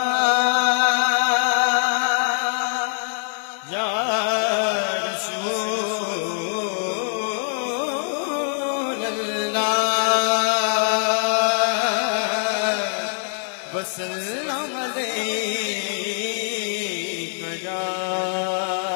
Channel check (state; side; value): silent; right; digital silence